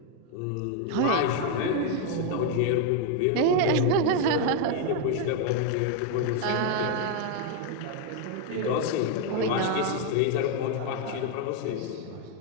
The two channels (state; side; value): different; both; correlation 0.01